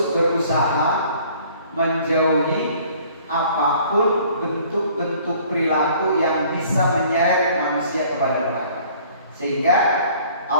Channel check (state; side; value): inverted; both; correlation -0.55